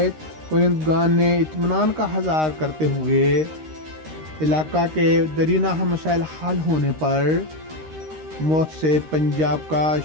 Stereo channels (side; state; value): left; late; 13 ms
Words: کنندگان نے اطمینان کا اظہار کرتے ہوئے علاقہ کے درینہ مسائل حل ہونے پر موت سے پنجاب کا